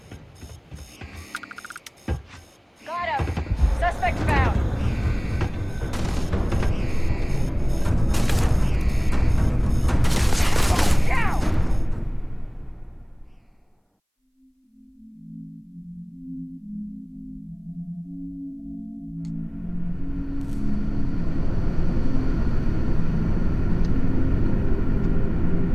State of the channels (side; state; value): both; identical; correlation 1.00